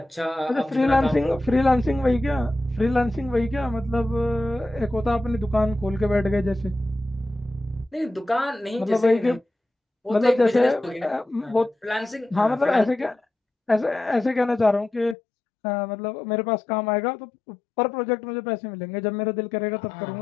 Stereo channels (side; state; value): right; drops out; at 15.2 s